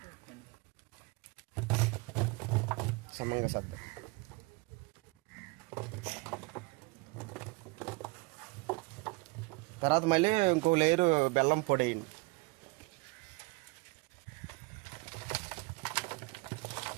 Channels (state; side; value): quieter; left; 27.0 dB